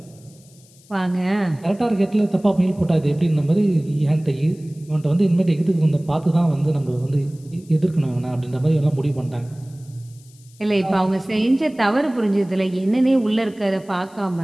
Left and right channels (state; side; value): noise; left; hiss, 28 dB below the sound